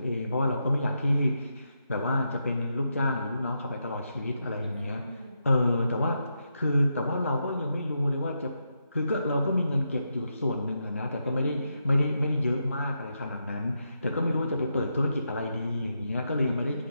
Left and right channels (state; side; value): inverted; both; correlation -0.84